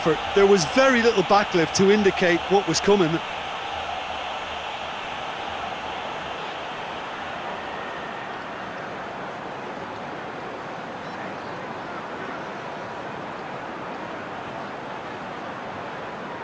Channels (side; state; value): both; identical; correlation 1.00